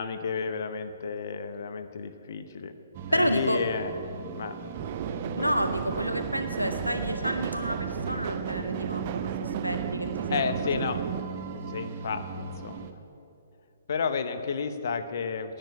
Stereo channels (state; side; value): inverted; both; correlation -0.68